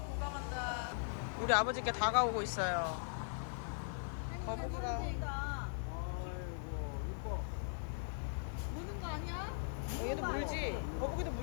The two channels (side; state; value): right; silent; 51 dB below the other